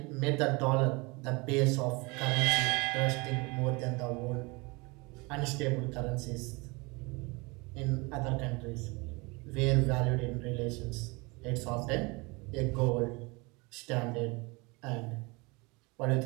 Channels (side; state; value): left; quieter; 26.8 dB